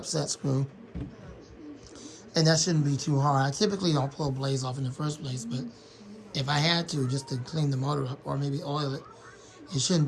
set screw. And that shouldn't be too hard. I typically don't pull blades off in the first place, but if I had to, just to clean the motor up or maybe oil it, it shouldn't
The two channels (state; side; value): identical; both; correlation 1.00